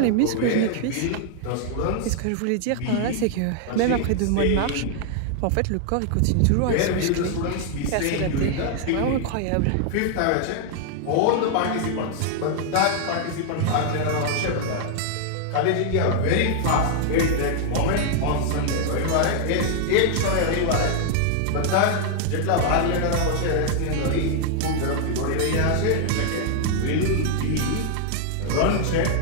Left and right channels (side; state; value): both; different; correlation 0.00